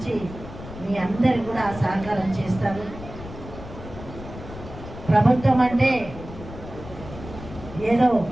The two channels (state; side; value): noise; left; rumble, 13 dB below the sound